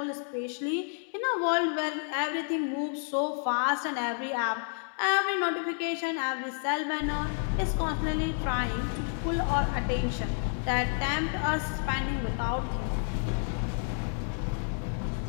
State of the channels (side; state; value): right; silent; 58 dB below the other